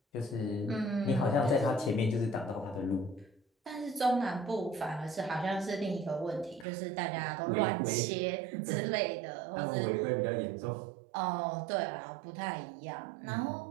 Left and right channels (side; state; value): left; drops out; at 6.7 s